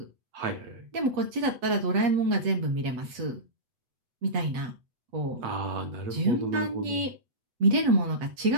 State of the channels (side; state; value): left; late; 8.1 ms